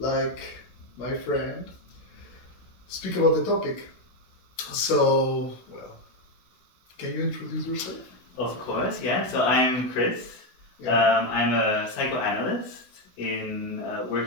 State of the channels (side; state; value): right; late; 16 ms